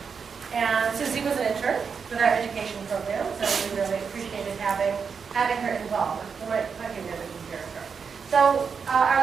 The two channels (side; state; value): left; quieter; 6.0 dB